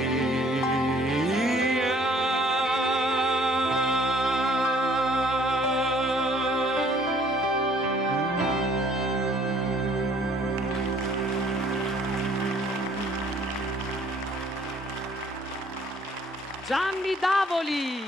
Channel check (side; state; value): both; normal; correlation 0.59